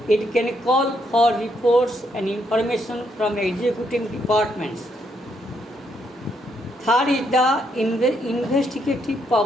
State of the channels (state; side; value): normal; both; correlation 0.75